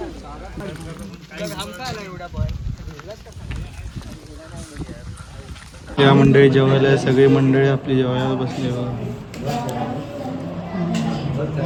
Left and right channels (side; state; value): both; identical; correlation 1.00